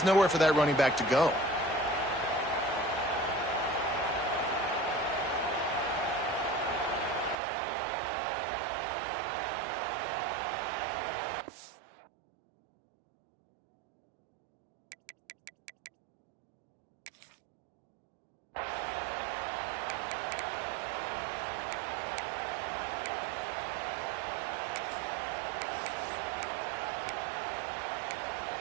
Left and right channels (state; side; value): drops out; left; at 7.4 s